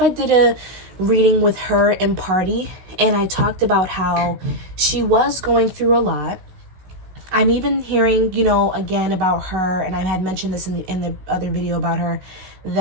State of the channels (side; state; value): left; late; 16 ms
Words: I did a reading with her in Party, and I talked about how she was going through a lot. I'm even hearing, you know, again about her, and I had mentioned this in the other video about her,